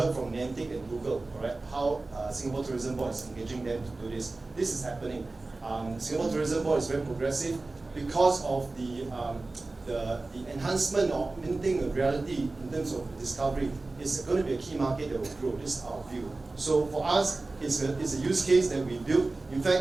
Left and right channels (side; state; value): left; quieter; 3.3 dB